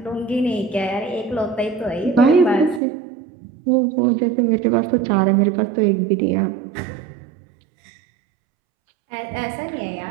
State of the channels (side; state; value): left; drops out; at 2.8 s